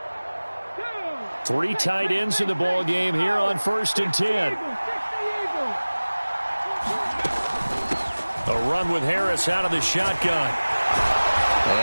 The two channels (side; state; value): both; inverted; correlation -1.00